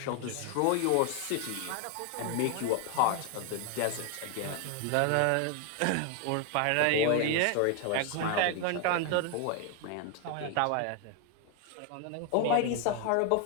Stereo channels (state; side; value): different; both; correlation 0.01